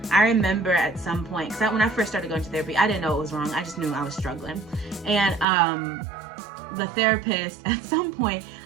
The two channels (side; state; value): left; drops out; at 5.5 s